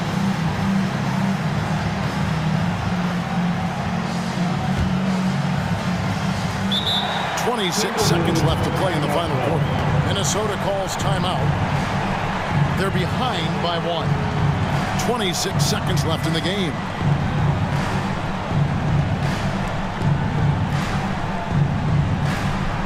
Six seconds left to play in the final quarter. Minnesota calls timeout. They're behind by 1. 26 seconds left in the game.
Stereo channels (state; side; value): identical; both; correlation 1.00